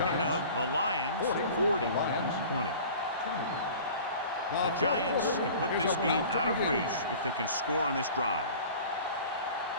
of the Lions 40-20. The Giants can put this game out of reach if they can score on this drive.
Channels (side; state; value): both; inverted; correlation -0.43